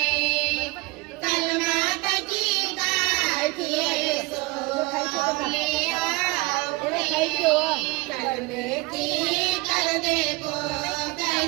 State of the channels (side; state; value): left; quieter; 24.3 dB